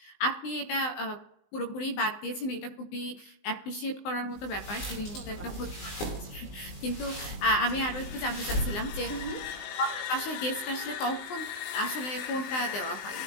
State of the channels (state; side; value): late; right; 19 ms